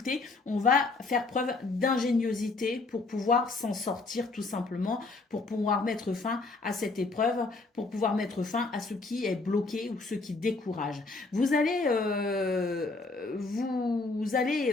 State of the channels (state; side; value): quieter; right; 3.6 dB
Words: on va faire preuve d'ingéniosité pour pouvoir s'en sortir tout simplement, pour pouvoir mettre fin à cette épreuve, pour pouvoir mettre fin à ce qui est bloqué ou ce qui décourage. Vous allez